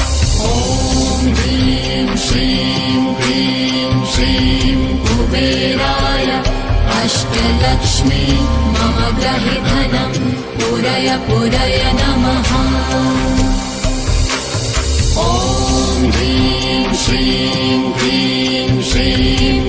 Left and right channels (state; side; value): identical; both; correlation 1.00